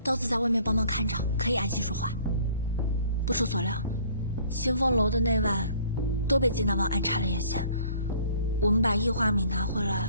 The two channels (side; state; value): both; inverted; correlation -0.55